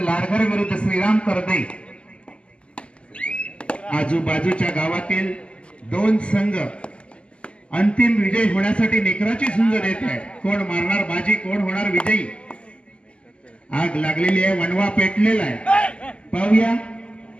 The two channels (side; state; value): right; late; 0.054 ms